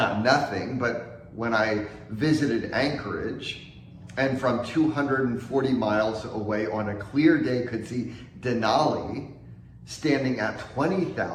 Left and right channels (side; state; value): both; identical; correlation 1.00